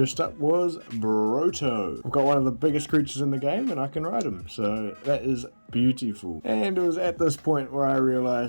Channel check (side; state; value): both; inverted; correlation -1.00